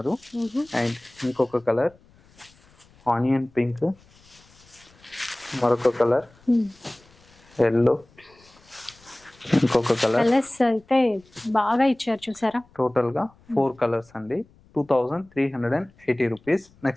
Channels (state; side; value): noise; left; rumble, 29 dB below the sound